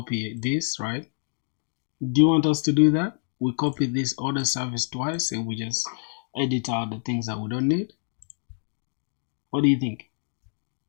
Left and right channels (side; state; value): right; silent; digital silence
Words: this, right? Do you want us to do that? We copy this order service twice and we just edit out the things that we don't need. What do you think?